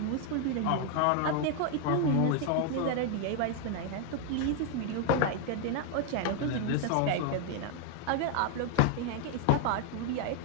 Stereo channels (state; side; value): different; both; correlation 0.00